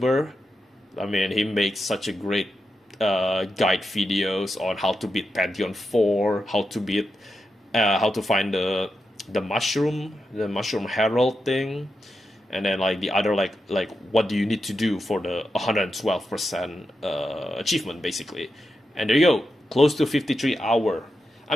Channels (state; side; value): normal; both; correlation 0.88